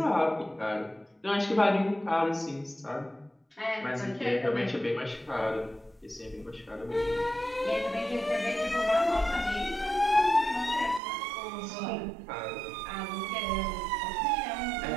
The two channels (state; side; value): drops out; left; at 11.0 s